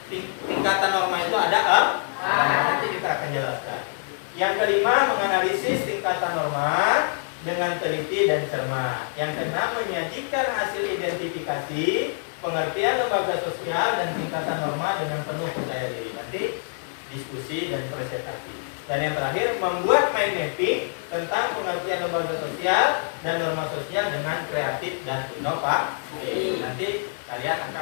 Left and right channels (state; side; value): silent; right; digital silence